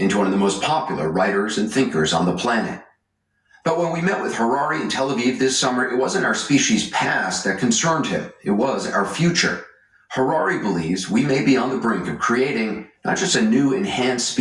one of the most popular writers and thinkers on the planet. But when we met with Harari in Tel Aviv this summer, it wasn't our species' past that concerned him. It was our future. Harari believes we may be on the brink of creating not just a new enhanced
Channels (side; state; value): both; identical; correlation 1.00